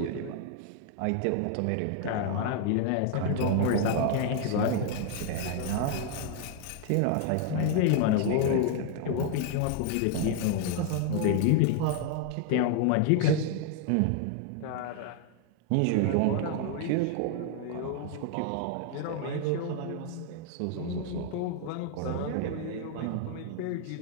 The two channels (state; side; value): different; both; correlation 0.00